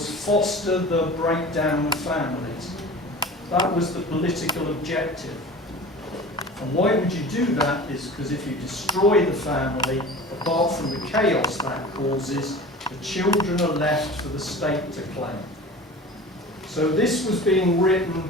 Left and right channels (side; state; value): both; normal; correlation 0.38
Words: foster the breakdown of families. That was the political objective. And why would you do that is because if you destroy the family, apart from the chaos that causes, the children are left for the state to claim. So this was being